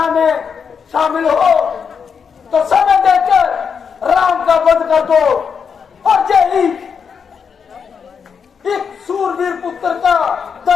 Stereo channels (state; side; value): quieter; right; 6.4 dB